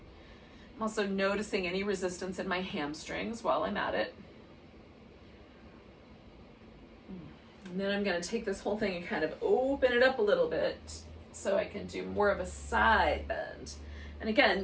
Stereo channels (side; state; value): both; identical; correlation 1.00